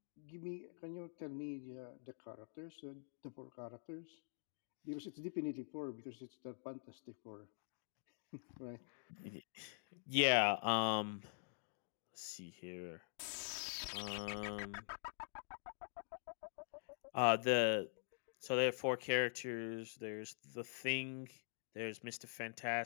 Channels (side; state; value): right; silent; digital silence